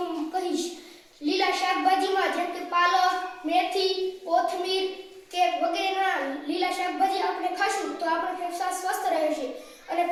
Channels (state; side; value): identical; both; correlation 1.00